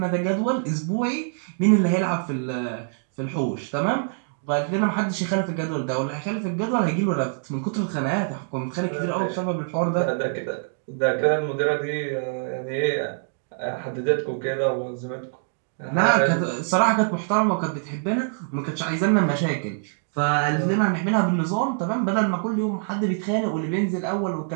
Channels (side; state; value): left; silent; digital silence